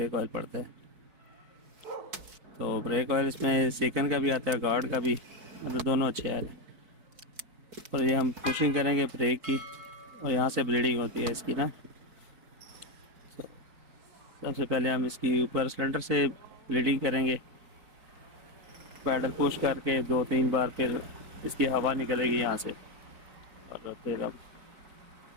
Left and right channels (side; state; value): left; late; 4.6 ms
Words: ऑयल पड़ता है। तो ब्रेक ऑयल इसमें सेकंड का भी आता है, गार्ड का भी, मतलब दोनों अच्छे आ रहे हैं। और ये हम पुशिंग करेंगे ब्रेक की, और यहाँ से ब्लीडिंग होती है इसकी ना। तो सबसे पहले हम इसकी ऊपर सिलेंडर से ब्लीडिंग करेंगे, पैडल पुश करके 2-3 बार, फिर इसकी हवा निकलेगी यहाँ से, और फिर अब